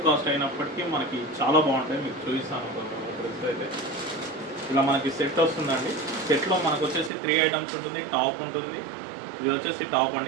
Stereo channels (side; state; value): left; drops out; at 7.1 s